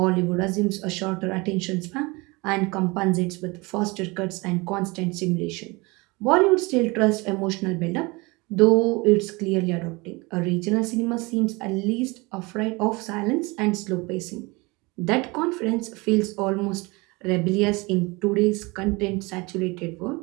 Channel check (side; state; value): left; quieter; 25.2 dB